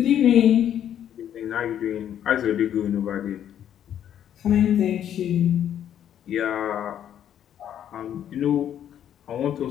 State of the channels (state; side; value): quieter; right; 10.1 dB